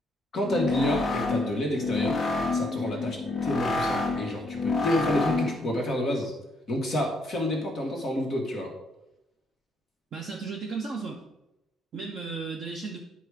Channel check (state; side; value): normal; both; correlation 0.72